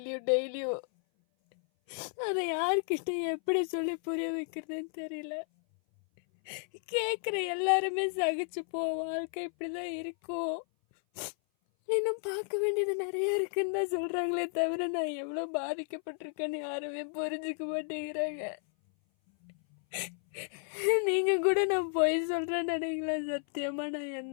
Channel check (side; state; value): right; silent; 56 dB below the other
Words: டெய்லியும். அதை யார்கிட்ட எப்படி சொல்லி புரிய வைக்கிறதுன்னு தெரியல. கேட்குற எல்லாருமே சகிச்சு போ, வாழ்க்கை இப்படி தான் இருக்கும், இன்னும் பார்க்க வேண்டியது நிறைய இருக்குன்னு தான் சொல்கிறாங்களே தவிர நான் எவ்வளோ பாதிக்கப்பட்டிருக்கேன்னு யாருமே புரிஞ்சுக்க மாட்டேங்கிறாங்க. நீங்கள் கூட நான் பொய் சொல்கிறேன்னு நினைக்கல. சத்தியமாக நான்